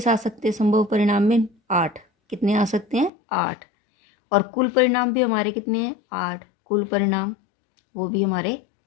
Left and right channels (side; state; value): right; drops out; at 3.1 s